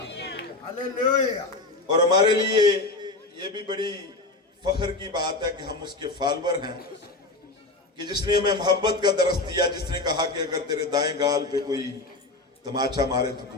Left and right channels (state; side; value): quieter; right; 3.1 dB